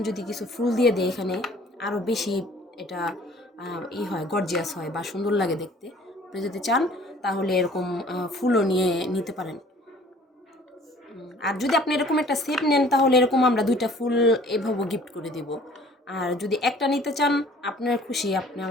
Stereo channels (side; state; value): both; normal; correlation 0.52